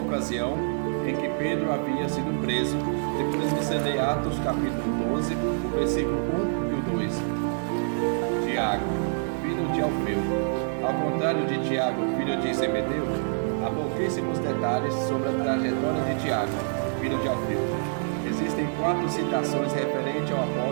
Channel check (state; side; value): silent; left; digital silence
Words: ocasião em que Pedro havia sido preso. Depois você lê Atos capítulo 12, o versículo 1 e o 2. Tiago, filho de Alfeu. Ao contrário de Tiago, filho de Zebedeu, há pouquíssimos detalhes sobre a trajetória de Tiago, filho de Alfeu. Existem 4 citações referentes ao